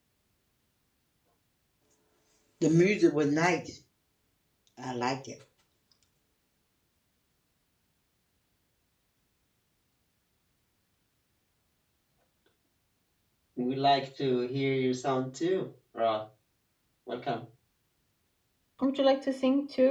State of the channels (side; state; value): both; identical; correlation 1.00